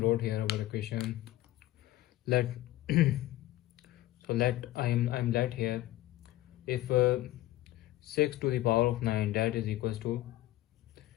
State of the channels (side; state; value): right; quieter; 16.0 dB